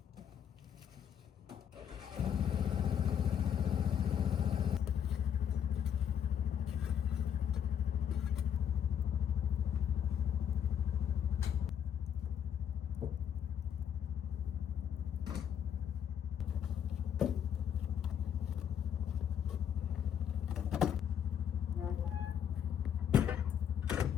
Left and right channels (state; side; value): quieter; right; 8.7 dB